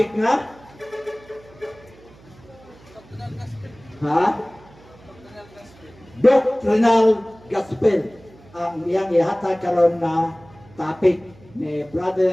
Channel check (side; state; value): right; noise; hum, 25 dB below the sound